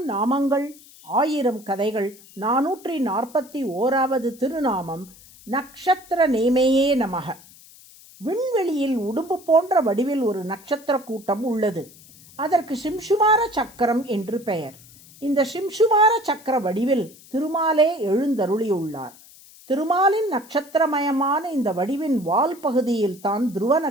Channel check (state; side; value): noise; left; hiss, 23 dB below the sound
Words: நாமங்கள் 1000 கதைகள் 441வது திருநாமம் நக்ஷத்திர நேமையே நமக. விண்வெளியில் உடும்பு போன்ற வடிவில் ஒரு நட்சத்திர கூட்டம் உள்ளது. அதற்கு சிம்சுமார சக்கரம் என்று பெயர். இந்த சிம்சுமார சக்கர வடிவில் திருமாலே எழுந்தருளியுள்ளார். திருமாலின் நட்சத்திரமயமான இந்த வடிவின் வால் பகுதியில் தான் துருவ